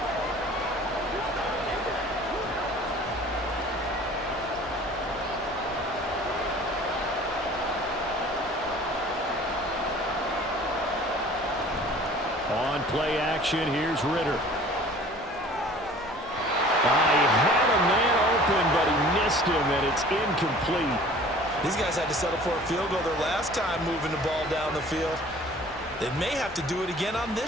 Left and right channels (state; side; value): normal; both; correlation 0.48